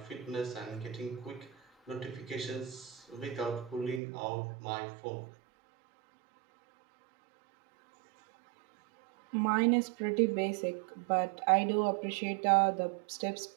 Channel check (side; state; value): left; drops out; at 4.0 s